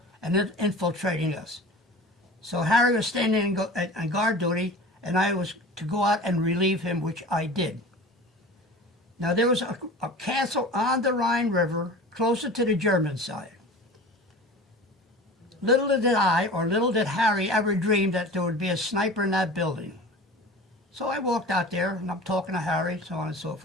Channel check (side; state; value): both; normal; correlation 0.37